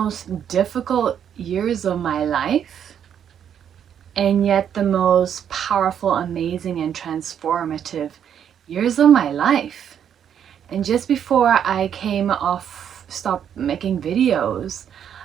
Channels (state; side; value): quieter; left; 8.8 dB